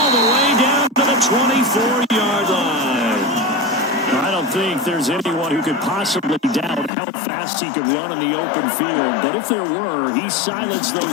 the way down to the 24-yard line. I don't think there's anyone who could possibly doubt how fast he could run in the open field. But if there were, he silenced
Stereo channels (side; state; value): right; drops out; at 6.9 s